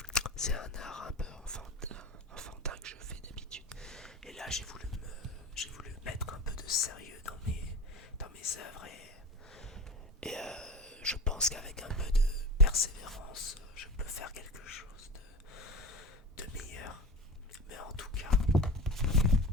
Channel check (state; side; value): normal; both; correlation 0.30